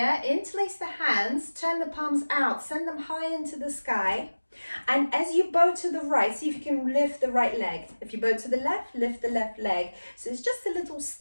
interlace the hands, turn the palms out, send them high into the sky. And as you bow to the right, see if you can lift the right leg. If you bow to the left, lift the left leg. So it's just the little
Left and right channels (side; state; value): both; inverted; correlation -1.00